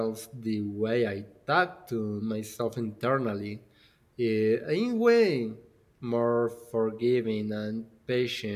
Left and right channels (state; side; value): identical; both; correlation 1.00